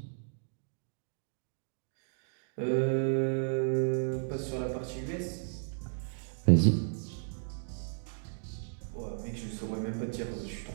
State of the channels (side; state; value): left; silent; digital silence